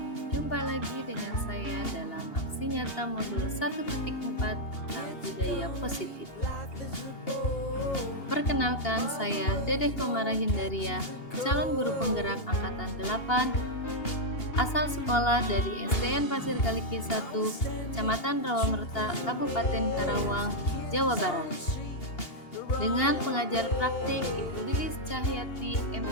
Jumpa lagi dengan saya dalam aksi nyata modul 1.4 tentang budaya positif. Perkenalkan, saya Dedeh Komara Hindaria, calon guru penggerak angkatan 8, asal sekolah dari SDN Pasir Kaliki 1, Kecamatan Rawamerta, Kabupaten Karawang, Jawa Barat. Dengan pengajar praktik Ibu Lilis Cahyati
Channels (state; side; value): late; right; 2.8 ms